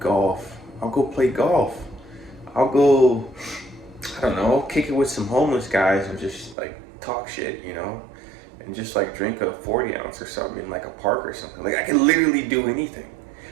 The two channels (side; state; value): left; drops out; at 6.6 s